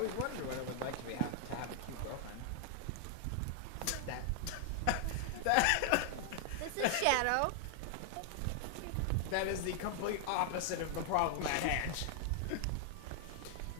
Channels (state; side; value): different; both; correlation 0.00